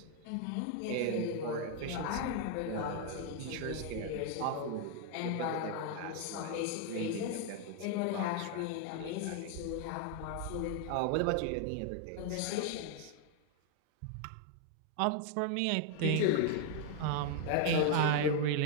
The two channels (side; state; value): both; different; correlation 0.00